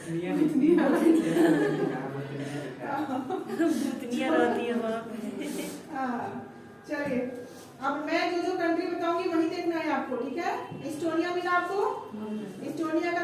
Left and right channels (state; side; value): identical; both; correlation 1.00